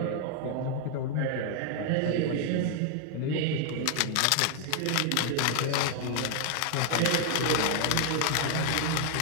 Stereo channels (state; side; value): different; both; correlation 0.00